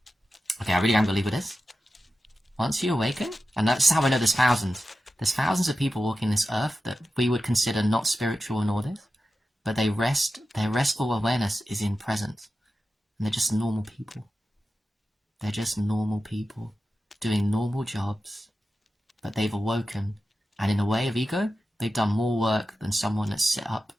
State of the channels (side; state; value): both; normal; correlation 0.92